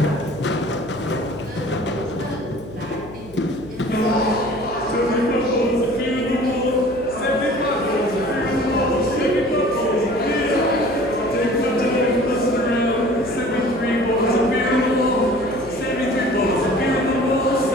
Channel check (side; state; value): left; noise; hum, 19 dB below the sound